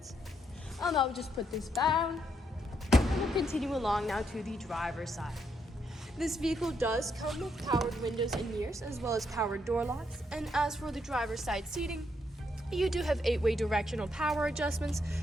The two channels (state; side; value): normal; both; correlation 0.77